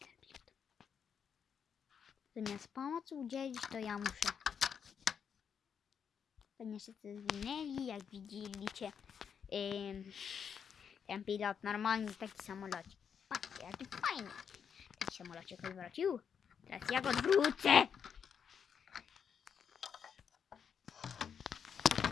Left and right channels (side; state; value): right; quieter; 7.3 dB